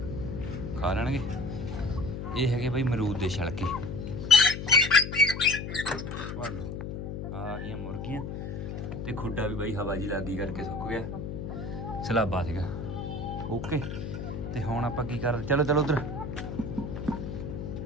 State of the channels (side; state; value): left; noise; hum, 6 dB below the sound